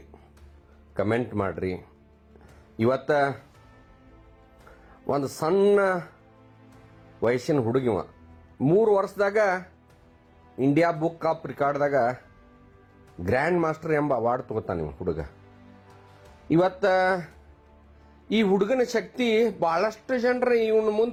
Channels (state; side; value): identical; both; correlation 1.00